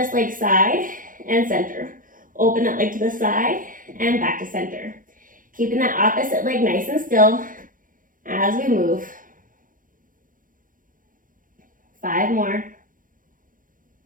leg side and center. Open that leg to the side and back to center. Keeping that opposite leg nice and still as we move. 5 more.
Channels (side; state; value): left; late; 0.39 ms